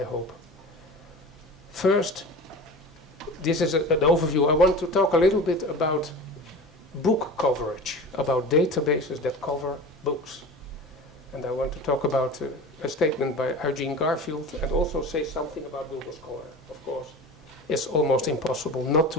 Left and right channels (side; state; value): both; normal; correlation 0.34